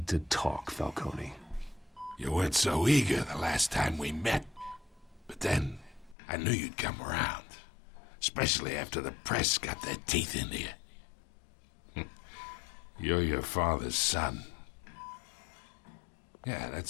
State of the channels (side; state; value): right; drops out; at 6.2 s